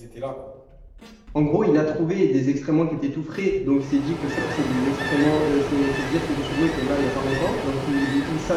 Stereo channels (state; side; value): identical; both; correlation 1.00